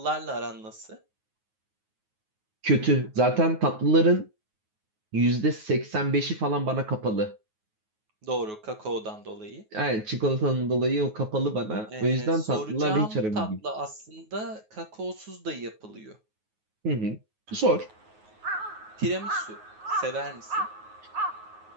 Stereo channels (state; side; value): late; left; 9.4 ms